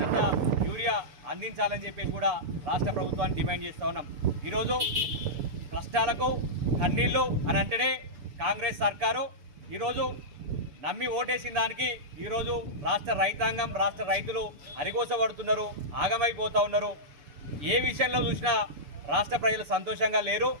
యూరియా అందించాలని చెప్పేసి కూడా రాష్ట్ర ప్రభుత్వాన్ని డిమాండ్ చేస్తూ ఉన్నాం. ఈరోజు కష్టాలకు కన్నీళ్ళు అని అంటేనే కాంగ్రెస్ సర్కారు ఈరోజు నమ్మి ఓటేసిన దానికి ఈరోజు రాష్ట్ర రైతాంగం రాష్ట్ర రైతులు అరిగోసపడుతున్నారు, ఆగమైపోతూ ఉన్నారు. ఏ విషయంలో చూసినా రాష్ట్ర ప్రజలు సంతోషంగా లేరు.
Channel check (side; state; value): left; late; 6.9 ms